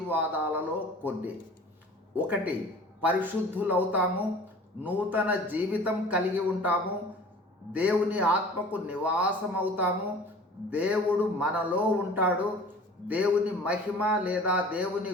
కొన్ని. ఒకటి, పరిశుద్ధులవుతాము, నూతన జీవితం కలిగి ఉంటాము, దేవుని ఆత్మకు నివాసమవుతాము, దేవుడు మనలో ఉంటాడు, దేవుని మహిమ లేదా దేవుని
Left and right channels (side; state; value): both; normal; correlation 0.44